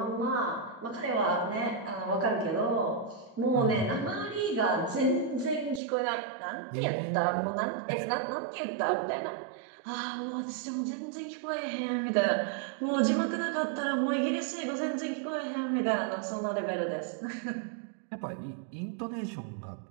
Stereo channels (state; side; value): drops out; left; at 5.8 s